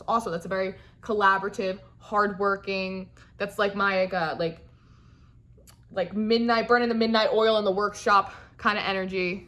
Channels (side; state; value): both; identical; correlation 1.00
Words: Also, that's a very collaborative, hardworking. That's like my like midnight, burning the midnight oil in the workshop kind of energy.